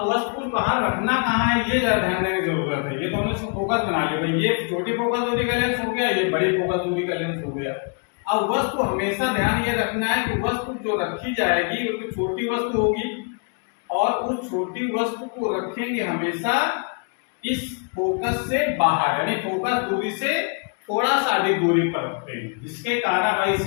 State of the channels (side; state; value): right; quieter; 38.7 dB